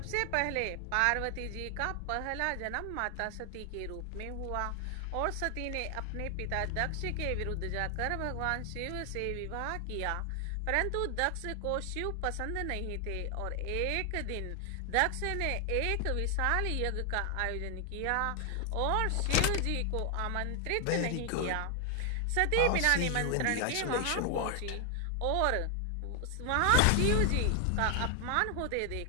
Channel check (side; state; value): both; different; correlation 0.00